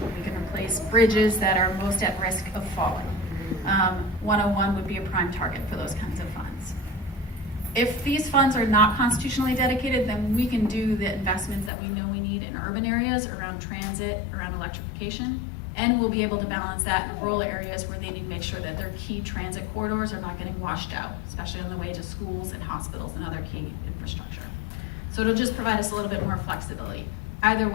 We can replace bridges that are most at risk of falling. 101 would be a prime target for those kinds of funds. If these funds are not constitutionally dedicated, then we can do the investments that we know we need in urban areas around transit, around electrification, and we'll be able to balance that in rural areas where they need to make sure that their key transit corridors are not getting washed out, especially on the way to schools and hospitals and other key infrastructure. So it'll just provide us a little bit more flexibility. Either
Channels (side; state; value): right; drops out; at 11.7 s